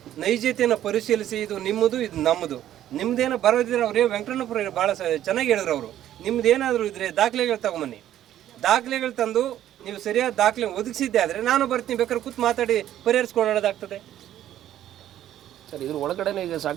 ನೈಜತೆಯನ್ನು ಪರಿಶೀಲಿಸಿ ಇದು ನಿಮ್ಮದು, ಇದು ನಮ್ಮದು, ನಿಮ್ದೇನೋ ಬರೋದಿದ್ರೆ ಅವರೇ ವೆಂಕಟರಮಣಪ್ಪ ಭಾಳ ಚೆನ್ನಾಗಿ ಹೇಳಿದ್ರು. ಅವರು ನಿಮ್ದೇನಾದರೂ ಇದ್ರೆ ದಾಖಲೆಗಳು ತಗೊಂಬನ್ನಿ, ದಾಖಲೆಗಳು ತಂದು ನೀವು ಸರಿಯಾದ ದಾಖಲೆ ಒದಗಿಸಿದ್ದೆ ಆದರೆ ನಾನು ಬರ್ತೀನಿ, ಬೇಕಾದ್ರೆ ಕೂತ್ ಮಾತಾಡಿ ಪರಿಹರಿಸ್ಕೊಳ್ಳೋದಾಗ್ತದೆ. ಸರ್, ಇದ್ರ ಒಳಗಡೆನೇ ಈಗ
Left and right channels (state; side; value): quieter; left; 12.0 dB